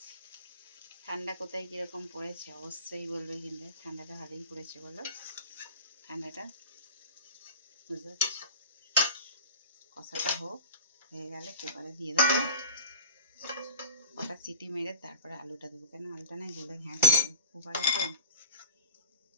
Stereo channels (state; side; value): inverted; both; correlation -0.36